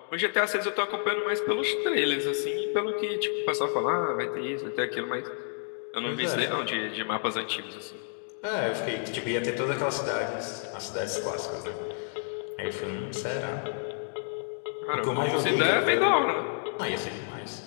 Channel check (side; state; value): right; silent; 58 dB below the other